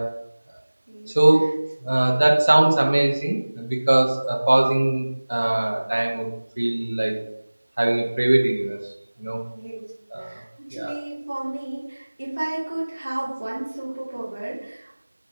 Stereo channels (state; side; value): inverted; both; correlation -1.00